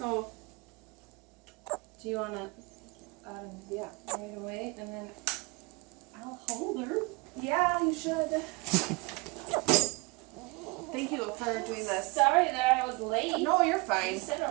do you want to Yeah. right away, and then I'll hold her. Yeah, you should. Thank you for doing this. Sorry that I was late. No, you're fine. You sit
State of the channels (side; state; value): left; quieter; 25.6 dB